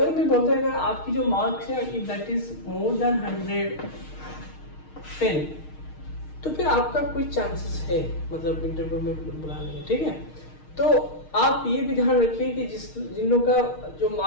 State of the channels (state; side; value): late; right; 6.5 ms